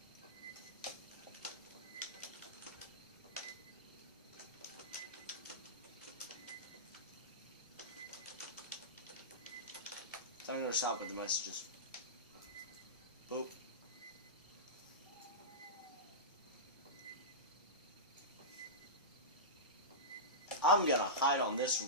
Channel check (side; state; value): both; normal; correlation -0.17